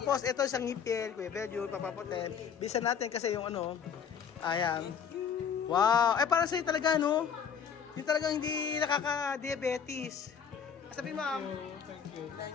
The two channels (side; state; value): right; quieter; 7.2 dB